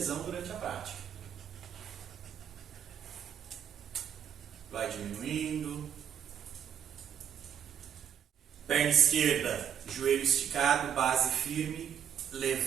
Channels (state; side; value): quieter; left; 8.7 dB